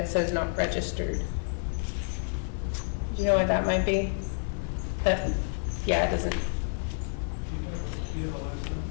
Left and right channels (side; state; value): right; silent; digital silence